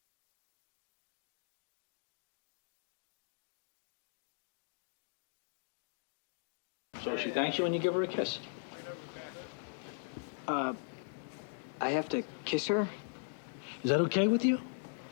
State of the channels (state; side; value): silent; right; digital silence